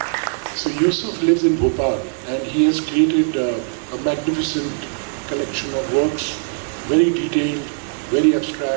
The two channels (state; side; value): silent; left; 63 dB below the other